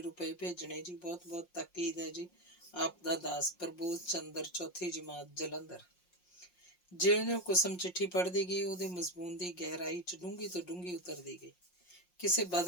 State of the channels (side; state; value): right; late; 5.6 ms